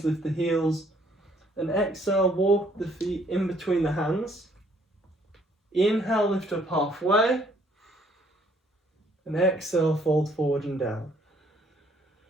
lift the heels. And exhale, walk the feet in between the hands. Inhale, lift up halfway. And exhale, fold forward and down.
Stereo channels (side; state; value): both; normal; correlation 0.64